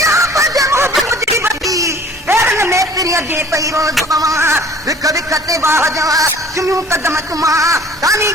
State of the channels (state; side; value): normal; both; correlation 0.50